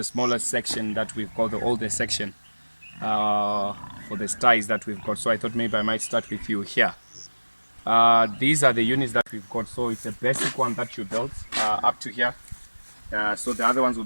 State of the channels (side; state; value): both; inverted; correlation -1.00